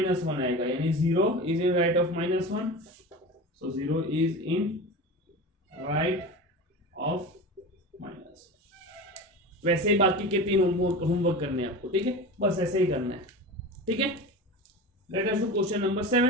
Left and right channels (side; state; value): both; normal; correlation 0.30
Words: आएगा, यानी 0 is in right of -1, so 0 is in right of -1। वैसे ही बाकी के 3 होमवर्क करने हैं आपको। ठीक है, बस ऐसे ही करना है। ठीक है, late us do question number